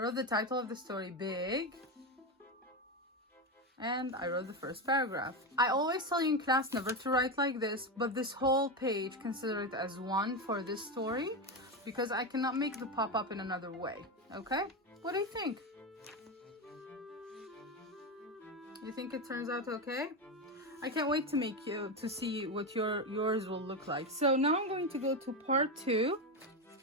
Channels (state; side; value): normal; both; correlation 0.14